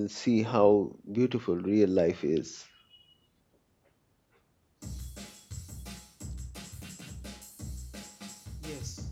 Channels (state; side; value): identical; both; correlation 1.00